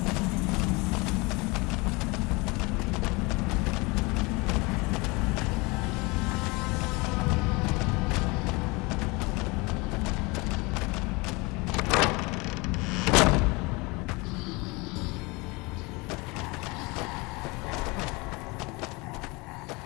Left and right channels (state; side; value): quieter; right; 25.8 dB